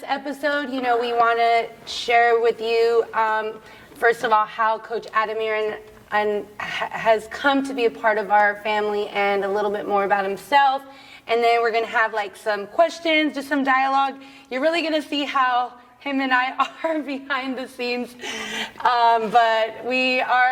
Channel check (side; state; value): both; identical; correlation 1.00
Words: episode, we want to share with you, first of all, how Coach Ademir has come to be a part of our family and a little bit more about himself. And then we're going to have like some questions, just some dialogue. You're really going to see how him and I are behind the scenes, but we